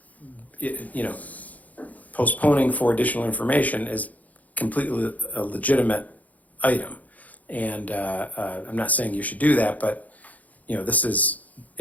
postponing for additional information is completely a legitimate item. And I'm not saying you should do that, but this is,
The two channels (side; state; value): right; late; 0.076 ms